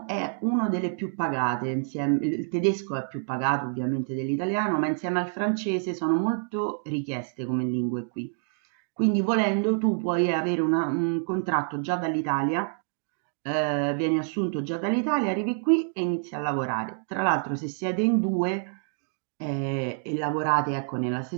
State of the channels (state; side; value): silent; left; digital silence